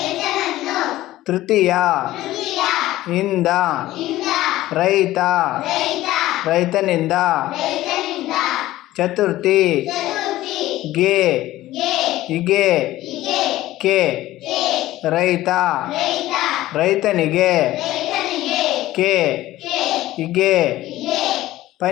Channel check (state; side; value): quieter; right; 15.8 dB